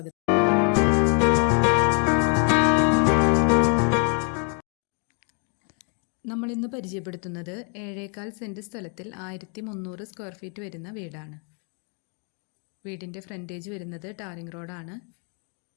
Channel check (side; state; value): right; quieter; 38.7 dB